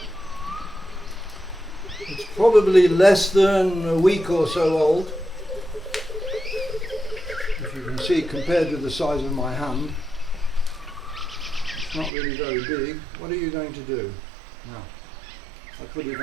It's probably less than a week or so old. If you can see, compared with the size of my hand, it's not really very big. What are you going to do? Now, I put it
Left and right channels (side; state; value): left; drops out; at 12.1 s